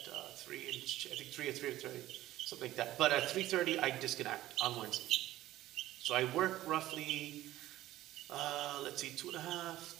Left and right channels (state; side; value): quieter; left; 15.1 dB